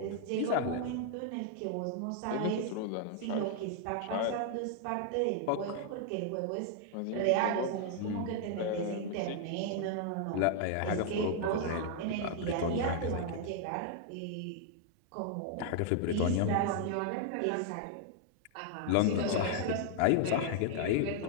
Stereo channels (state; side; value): different; both; correlation 0.00